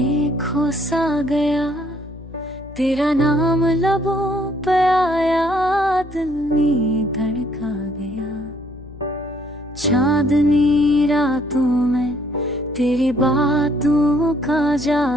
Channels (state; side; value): noise; left; hum, 17 dB below the sound